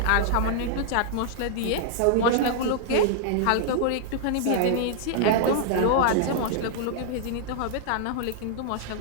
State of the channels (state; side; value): different; both; correlation -0.01